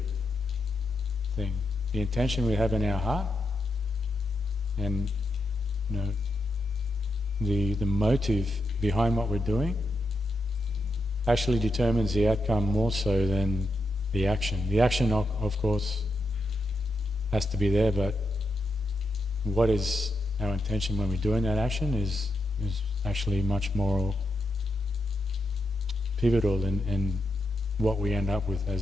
thing. The intention we have in our heart and the motive behind what we're doing actually determines the outcome more so than the action. The action, of course, has to be there, but what is our intention when we're doing that action is actually much more pivotal in what we end up with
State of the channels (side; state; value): both; normal; correlation 0.84